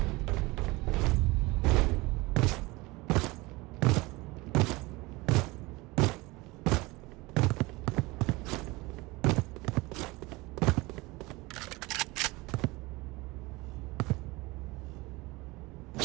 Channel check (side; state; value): left; quieter; 22.6 dB